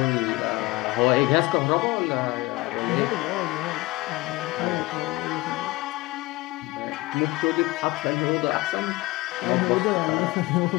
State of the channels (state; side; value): quieter; right; 21.0 dB